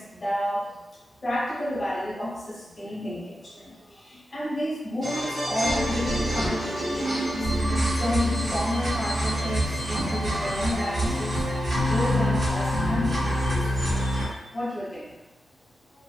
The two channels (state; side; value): normal; both; correlation 0.89